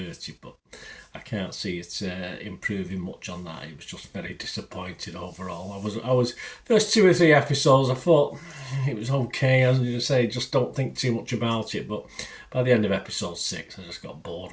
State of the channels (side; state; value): both; identical; correlation 1.00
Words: but I can't see it improving much on that. It was just very disappointed overall. I was first 2 or 3 episodes, I thought it was okay. As you say, just don't think too much about it. But by the end of episode 6, I just got bored